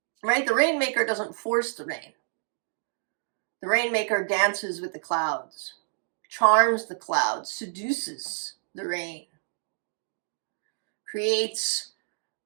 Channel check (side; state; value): left; silent; digital silence